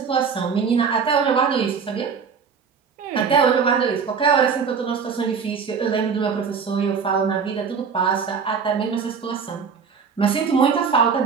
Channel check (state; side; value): quieter; left; 6.1 dB